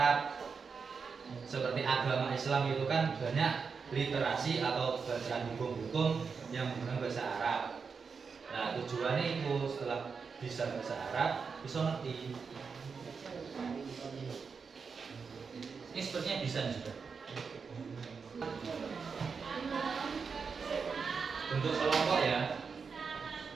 seperti agama Islam itu kan banyak literasi atau bacaan hukum-hukum yang menggunakan bahasa Arab. Nah, tujuannya itu setelah bisa bahasa Arab, bisa ngerti. Ini sepertinya bisa juga. Bentuk kelompok ya.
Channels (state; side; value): quieter; left; 5.5 dB